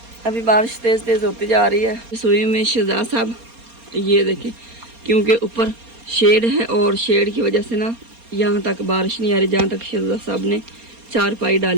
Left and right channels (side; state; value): left; late; 4.3 ms